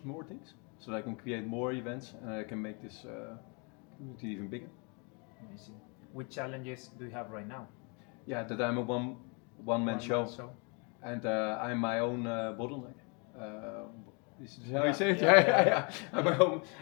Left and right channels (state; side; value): quieter; right; 33.8 dB